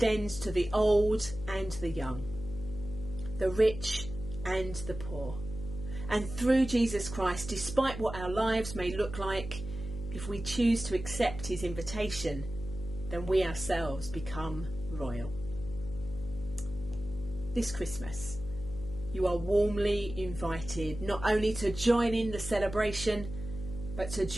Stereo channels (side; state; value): left; noise; hum, 10 dB below the sound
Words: to the old and the young, the rich and the poor. And through Jesus Christ, despite what our lives may look like, if we choose to accept his invitation, then we ourselves become royal. This Christmas, you are warmly invited not only to join in the celebration, but to